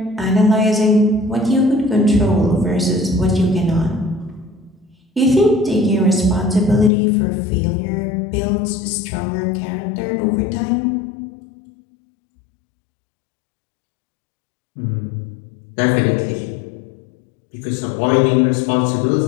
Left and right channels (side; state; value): right; drops out; at 6.9 s